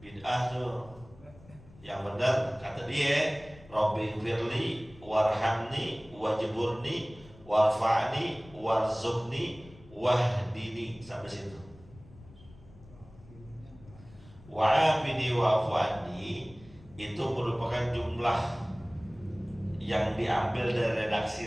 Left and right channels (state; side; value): noise; left; rumble, 22 dB below the sound